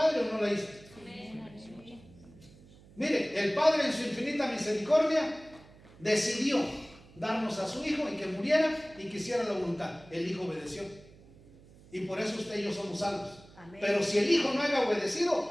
o no la hizo? Mire, el Padre en su infinita misericordia decidió darnos a su Hijo y que muriera y que hiciera la voluntad. El Hijo obedeció. Y por eso usted y yo somos salvos. Amén. Pero si el Hijo no había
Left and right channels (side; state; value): right; noise; hum, 23 dB below the sound